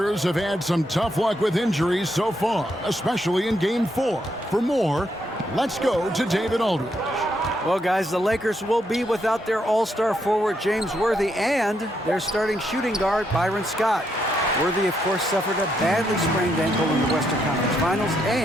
have had some tough luck with injuries so far, especially in Game 4. For more, let's go to David Aldridge. Well, guys, the Lakers will be without their all-star forward James Worthy and their starting shooting guard Byron Scott. Worthy, of course, suffered a badly sprained ankle in the Western Conference Finals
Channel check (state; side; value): normal; both; correlation 0.78